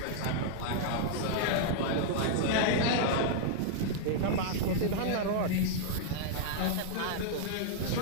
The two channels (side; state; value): both; different; correlation -0.01